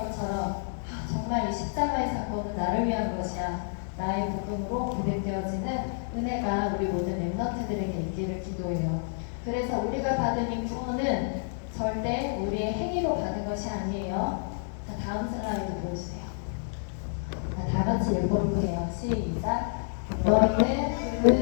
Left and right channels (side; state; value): right; silent; digital silence